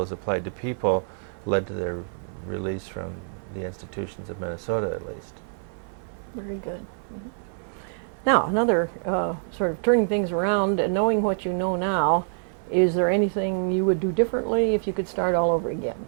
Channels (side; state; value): left; silent; 57 dB below the other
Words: applied to people led to their release from the institutions of Minnesota, at least. Very good. Mm-hmm. Now, another sort of turning things around and knowing what you know now, is there anything you would do differently if you could start all over again,